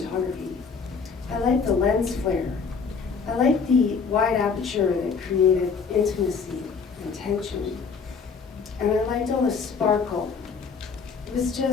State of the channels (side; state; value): right; quieter; 5.4 dB